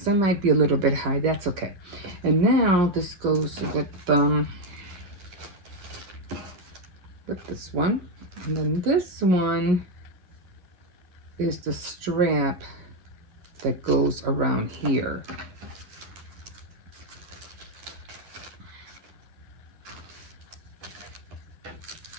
it might be a little bit high. That's okay. And now this goes with this one. And then this one is the strap that goes around here.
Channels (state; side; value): late; left; 10 ms